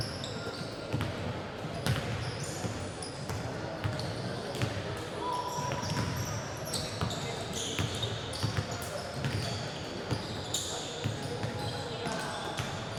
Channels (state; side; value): identical; both; correlation 1.00